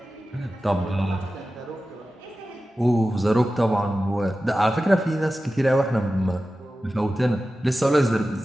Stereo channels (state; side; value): normal; both; correlation 0.94